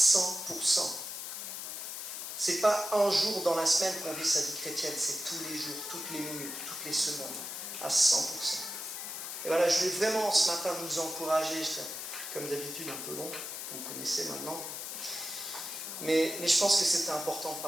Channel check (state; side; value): noise; left; hiss, 6 dB below the sound